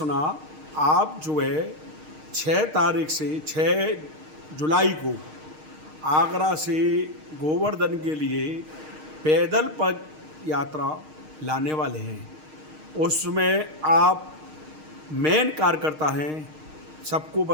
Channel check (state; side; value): late; left; 6.5 ms